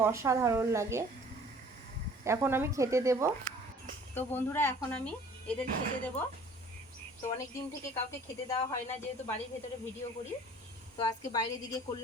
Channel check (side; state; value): both; normal; correlation 0.51